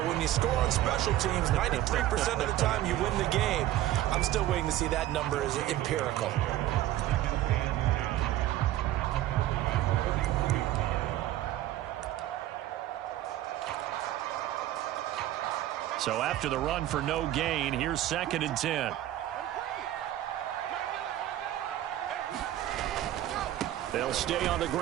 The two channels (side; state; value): left; quieter; 13.8 dB